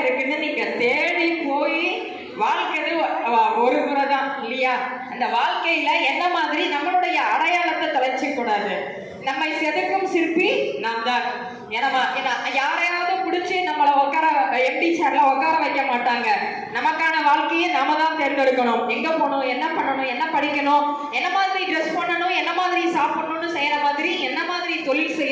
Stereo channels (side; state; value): both; identical; correlation 1.00